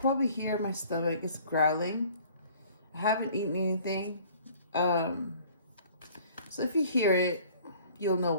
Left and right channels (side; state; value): both; inverted; correlation -0.53